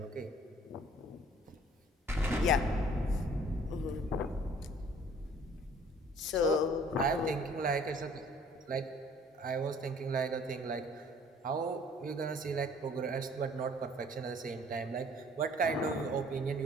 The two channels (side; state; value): both; normal; correlation 0.55